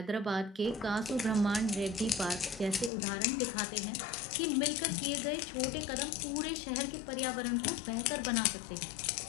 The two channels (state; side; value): drops out; right; at 2.9 s